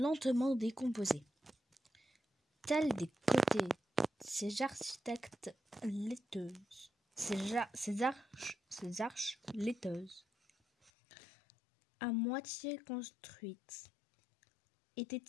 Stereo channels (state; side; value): drops out; right; at 10.9 s